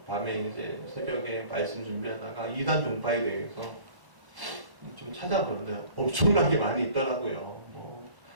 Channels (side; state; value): left; late; 1.1 ms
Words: 밤에 이제 새벽에 말씀 준비하다가 이단 종파에 대해서 좀 찾아보는데 엄청나게 많이 있더라고요.